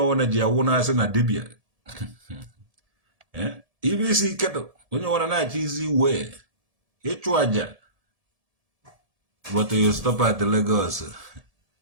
ji awụ na-asị na dibịa ibe isi ike dụ onye ọwụna na-achọ izi wee ịchụ aja. But you stop at Lagos,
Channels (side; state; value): left; late; 1.7 ms